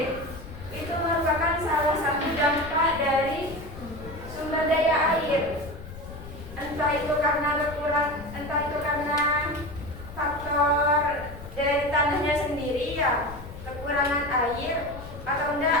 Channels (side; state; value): left; noise; rumble, 14 dB below the sound